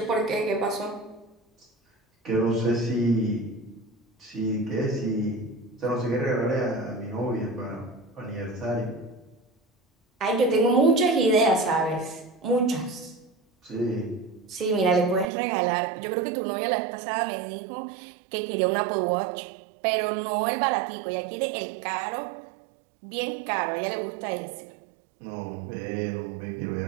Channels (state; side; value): drops out; left; at 15.2 s